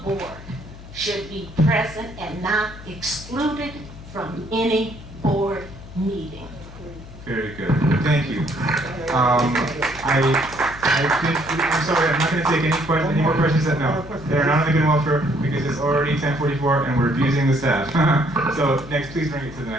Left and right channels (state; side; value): noise; left; hum, 16 dB below the sound